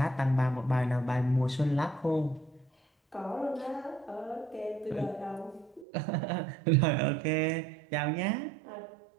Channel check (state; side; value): drops out; left; at 5.9 s